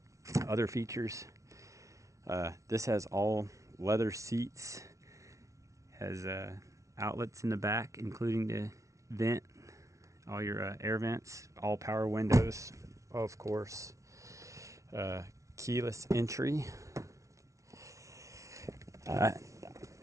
Other features, this has all leather seats, has outlets in the back including the vent, all your air vents, all power windows, of course, keyless entry. I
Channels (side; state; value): left; late; 0.15 ms